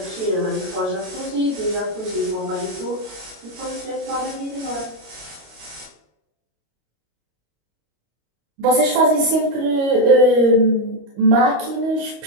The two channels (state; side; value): late; left; 25 ms